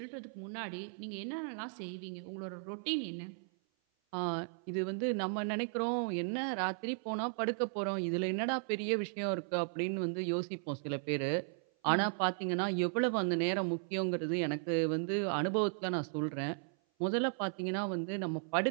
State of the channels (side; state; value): left; silent; 54 dB below the other